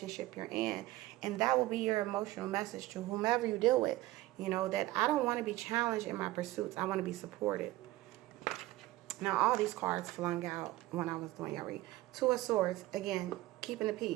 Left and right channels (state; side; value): quieter; left; 17.6 dB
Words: you're in. And that will be your emotional message to whomever you deal with, that I don't want to be challenged in my pursuits. I want to be supported. Now, all these cards flung out when I was doing your read. Two of Swords, again, keeping the